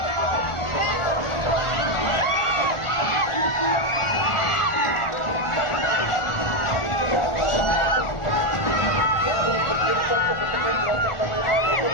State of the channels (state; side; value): late; right; 1.4 ms